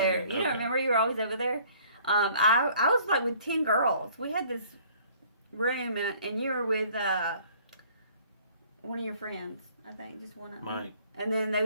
You don't remember you were always over there? I was like with 10 girls. We had this room, and you were with one of your friends, I think, just one of them. Mike. And then there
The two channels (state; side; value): inverted; both; correlation -0.56